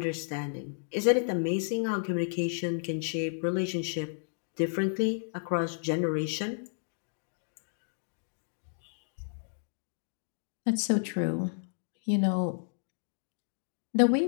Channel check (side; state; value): right; silent; digital silence